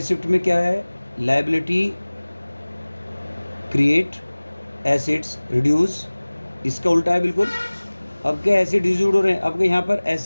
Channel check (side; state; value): both; inverted; correlation -1.00